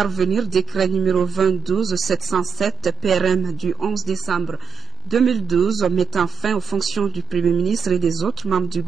Décret numéro 22-707 PRM du 11 décembre 2012 mettant fin aux fonctions du Premier ministre et des autres membres du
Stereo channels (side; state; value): left; quieter; 6.9 dB